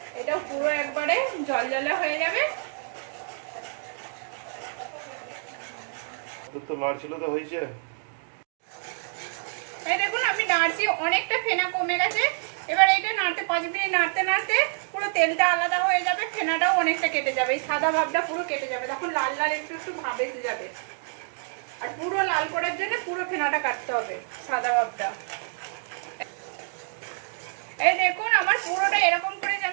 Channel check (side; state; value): left; silent; 60 dB below the other